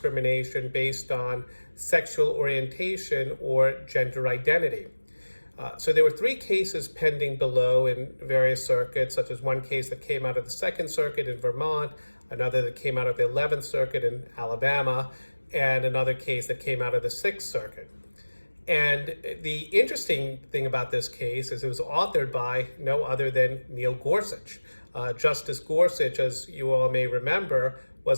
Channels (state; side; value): inverted; both; correlation -1.00